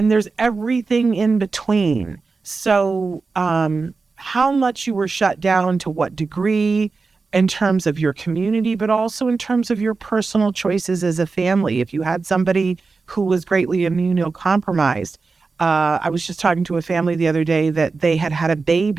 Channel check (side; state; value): left; quieter; 4.3 dB